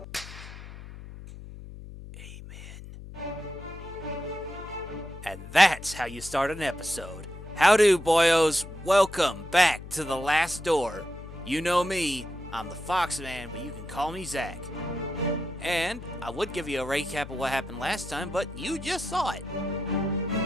And that's how you start an episode. Howdo, boyos. Welcome back to The Last Door. You know me, I'm the Foxman, but you can call me Zach. And I would give you a recap of what happened last time, but you just saw it.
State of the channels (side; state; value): left; noise; hum, 13 dB below the sound